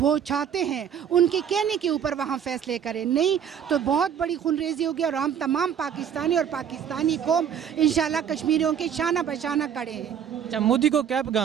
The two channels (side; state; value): left; quieter; 8.5 dB